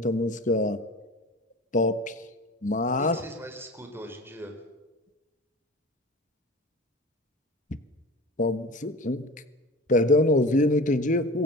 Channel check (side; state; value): both; normal; correlation 0.36